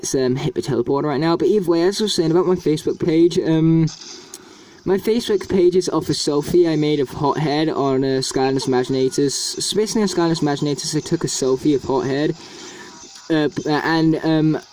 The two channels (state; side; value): identical; both; correlation 1.00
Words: hit the teleporter right now. But either way, as I was saying about my Facebook page, my Facebook page is off a selfie I made of Hothead on Skylanders Imaginators. So basically on Skylanders Imaginators, I took a selfie of Hothead. And